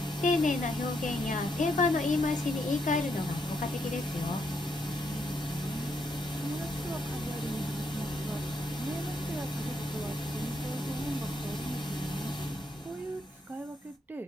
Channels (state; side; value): normal; both; correlation 0.77